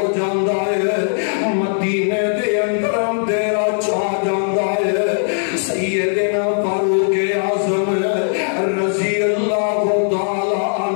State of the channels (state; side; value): silent; right; digital silence